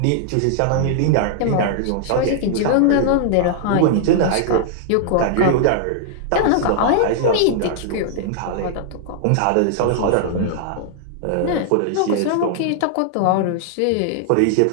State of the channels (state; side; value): different; both; correlation -0.01